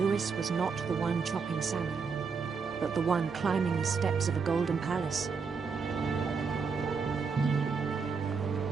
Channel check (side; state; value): left; quieter; 5.4 dB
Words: was not the one chopping salmon, but the one climbing the steps of a golden palace.